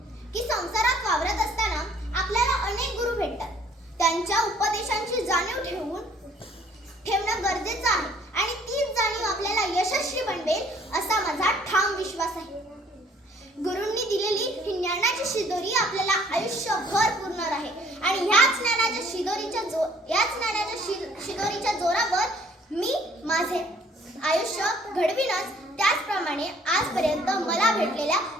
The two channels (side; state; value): both; normal; correlation 0.59